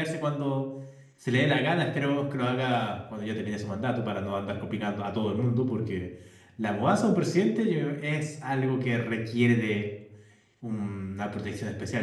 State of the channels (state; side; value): identical; both; correlation 1.00